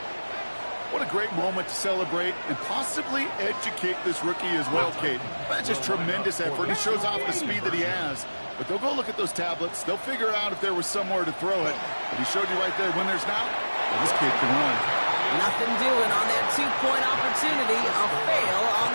What a great moment to celebrate and possibly educate this rookie as well, Kate. That's just tremendous effort. He shows off the speed that he has. But they'll go look at those tablets. They'll figure out if there was somewhere to throw it. But he showed you right there, when there's not, well, this kid can run. Nothing doing on that 2-point opportunity. A fail on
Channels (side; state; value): both; inverted; correlation -1.00